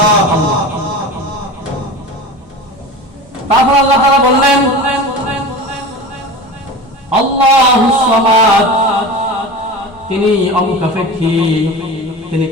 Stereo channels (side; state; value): both; normal; correlation 0.32